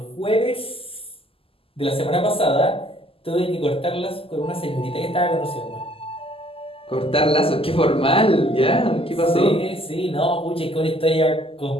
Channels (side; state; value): right; late; 0.26 ms